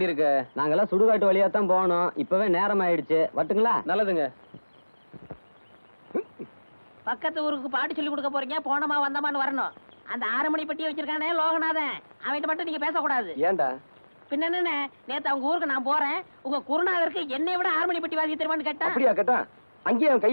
நாங்கெல்லாம் சுடுகாட்டு வழியா தான் போகணும். இப்பவே நேரம் ஆயிடுச்சு. வட்டுங்களா? நல்லதுங்க. பக்கத்து ஊருக்கு பாட்டு சொல்லி கொடுக்க போறீங்க, போனமா வந்தமான்னு வரணும். அந்த 6 மணி பெட்டியை வச்சிருக்கானே லோகநாதன், அவன்கிட்ட மட்டும் நீங்க பேசக்கூடாது. ஏண்டா? பின்ன என்ன, நேத்து அவங்க ஊருக்கு நான் போறேன், உங்க குருநாதருக்கு என்னை விட 6 மணி பெட்டி வாசி தருவான்னு கேட்டா. அப்படியா கேட்டா? அங்கேயே அவன்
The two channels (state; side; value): inverted; both; correlation -1.00